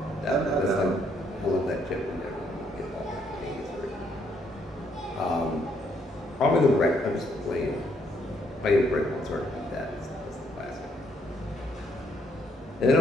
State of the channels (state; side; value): normal; both; correlation 0.71